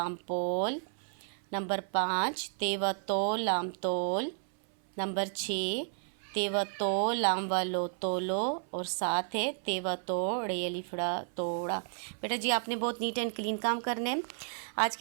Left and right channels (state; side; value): silent; left; 56 dB below the other